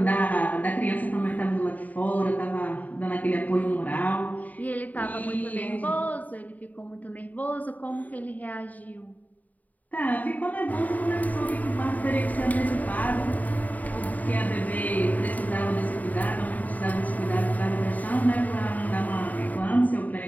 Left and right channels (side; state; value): right; late; 0.077 ms